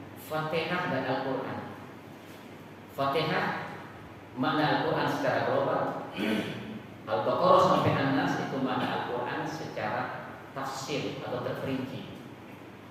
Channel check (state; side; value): identical; both; correlation 1.00